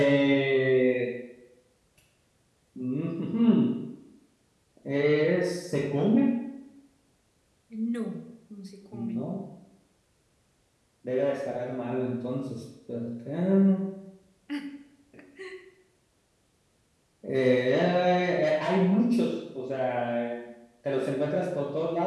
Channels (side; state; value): both; identical; correlation 1.00